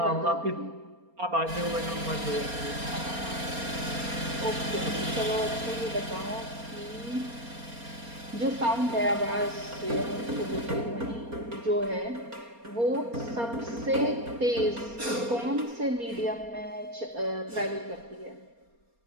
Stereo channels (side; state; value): left; late; 4.3 ms